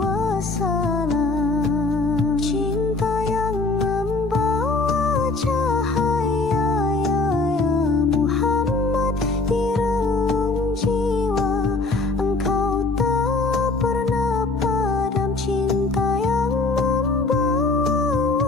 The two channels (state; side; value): quieter; right; 3.5 dB